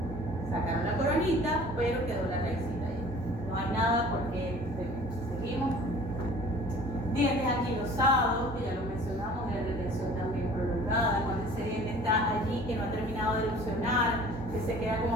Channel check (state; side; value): normal; both; correlation 0.47